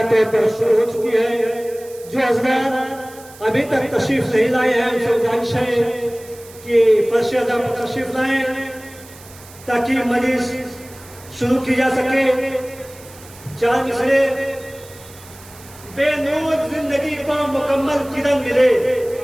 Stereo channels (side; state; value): right; noise; hiss, 21 dB below the sound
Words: طور پر شروع ہو چکی ہے جو حضرات ابھی تک تشریف نہیں لائے ہیں ان سے گزارش ہے کہ فرش ادا پر تشریف لائیں تاکہ مجلس شروع کی جا سکے چار مصرے بے نور زندگی کو مکمل کرن ملے